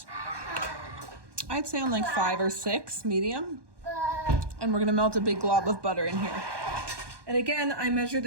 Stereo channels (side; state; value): left; late; 1.2 ms